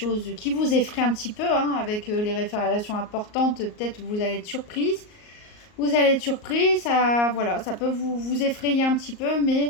qui vous effraient un petit peu, hein, avec les révélations importantes. Peut-être vous allez être surprise. Vous allez être surprise, ça, voilà, ça peut vous effrayer un petit peu,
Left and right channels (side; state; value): right; late; 38 ms